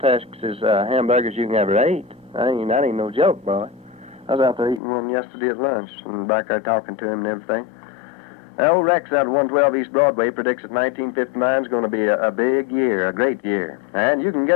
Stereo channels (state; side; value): drops out; right; at 4.8 s